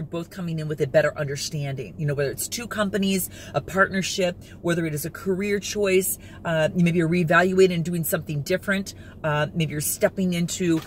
both coming in with a better understanding. You know, whether it's two companies, a partnership, whether it is a career choice, maybe you're reevaluating and doing something different. Maybe you're stepping into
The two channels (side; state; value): both; identical; correlation 1.00